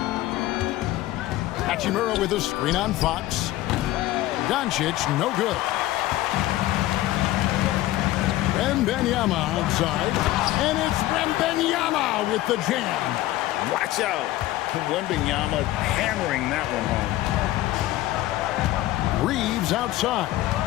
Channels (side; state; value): right; quieter; 15.9 dB